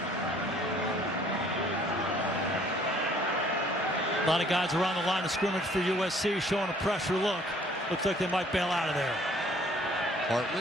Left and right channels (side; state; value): both; normal; correlation 0.58